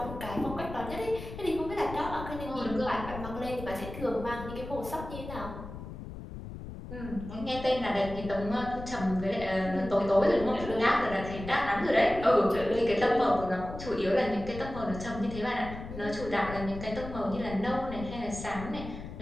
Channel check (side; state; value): left; noise; rumble, 10 dB below the sound